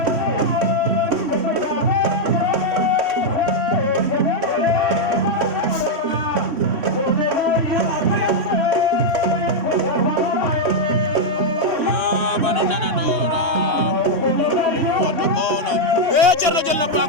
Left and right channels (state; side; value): late; left; 3.1 ms